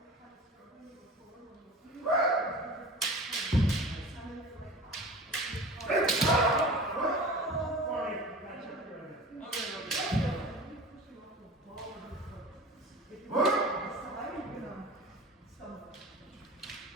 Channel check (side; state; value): both; normal; correlation 0.37